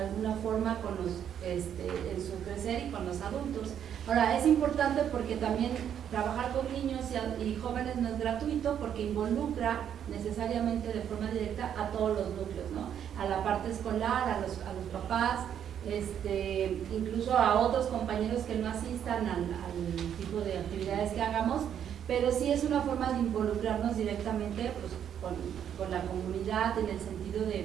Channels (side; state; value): left; quieter; 9.2 dB